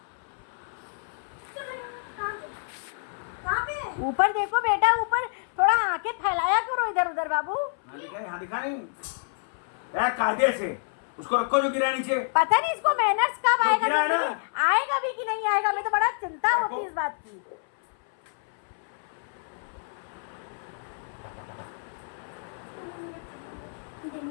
ऊपर देखो बेटा, ऊपर थोड़ा आंखें फैलाया करो इधर उधर बाबू। हाँ दिखा नहीं यार, कायदे से उसको रखो जो गिरा नीचे। पता नहीं इसको मैनर्स कब तो आएगा, गिरा है ना? आएगा भी कि नहीं आएगा, मैं तो बड़ा चिंता होती है इस बात की।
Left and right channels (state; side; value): silent; right; 59 dB below the other